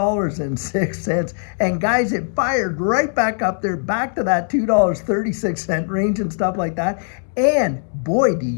and guys, it fired right back up there, back to that $2.36 range and stuff like that. And boy, do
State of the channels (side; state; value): right; silent; 66 dB below the other